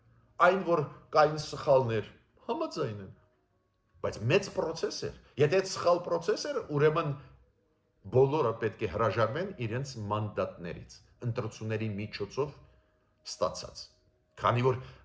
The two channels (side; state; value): both; identical; correlation 1.00